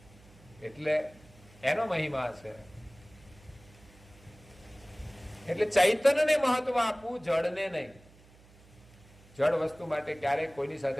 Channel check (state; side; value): noise; right; hum, 25 dB below the sound